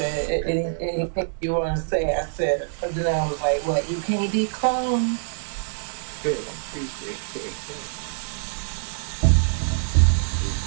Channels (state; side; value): silent; left; 59 dB below the other